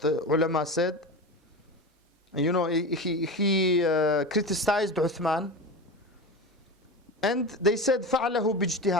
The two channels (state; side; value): normal; both; correlation 0.25